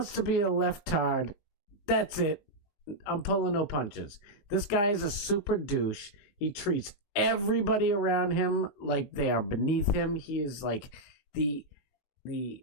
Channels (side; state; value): right; late; 20 ms